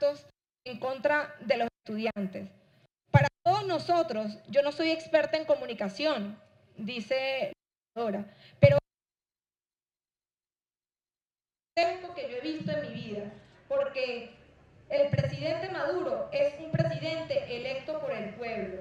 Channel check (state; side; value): identical; both; correlation 1.00